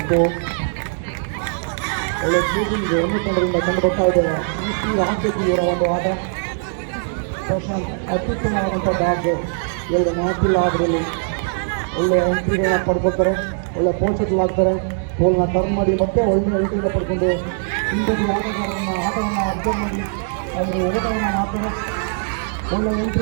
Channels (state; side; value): silent; left; digital silence